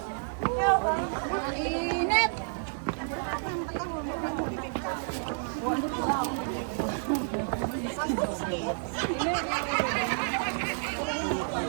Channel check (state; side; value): silent; left; digital silence